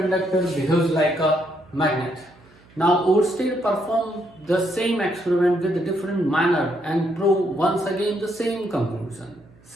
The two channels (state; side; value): noise; right; hum, 28 dB below the sound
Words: behaves like a magnet. Now Oersted performed the same experiment with a different manner and proved once again the same conclusion.